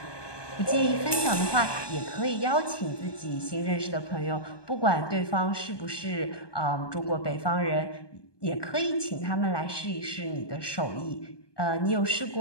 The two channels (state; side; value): late; right; 1.2 ms